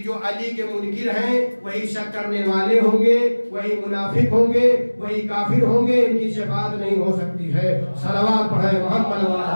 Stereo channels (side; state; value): both; inverted; correlation -1.00